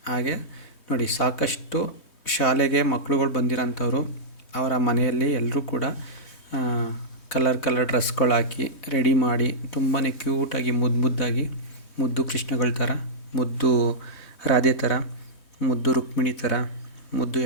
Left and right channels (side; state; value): right; late; 3.2 ms